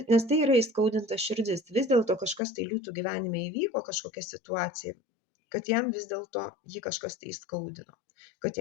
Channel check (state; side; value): drops out; right; at 2.4 s